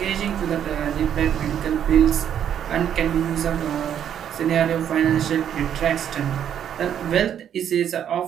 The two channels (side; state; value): left; quieter; 9.4 dB